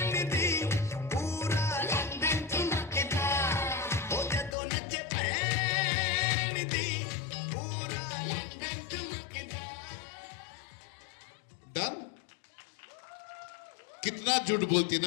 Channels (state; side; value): drops out; right; at 4.5 s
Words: दी पूरा लंदन ठुमकदा ओ जदों नच पैन दी पूरा लंदन ठुमकदा डन। कितना झूठ बोलती